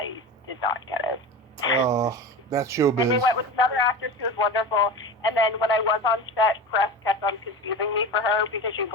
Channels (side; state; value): both; normal; correlation 0.29